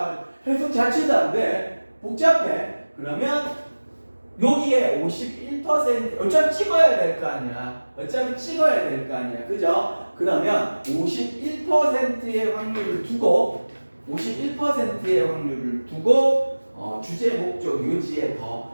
해석 자체도 안 돼. 복잡해. 그러면 여기에 51% 어차피 찍어야 될 거 아니야. 그죠? 그러면 51%의 확률을 두고 주제, 목적, 요지에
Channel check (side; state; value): both; inverted; correlation -1.00